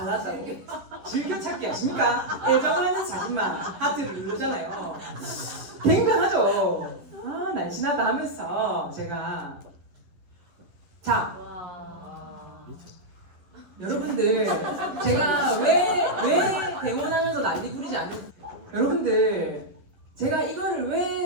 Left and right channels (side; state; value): left; late; 11 ms